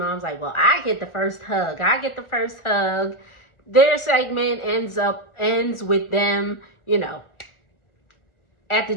like, well, I get the first hug. Their segment ends with them, at the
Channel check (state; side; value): late; right; 1.4 ms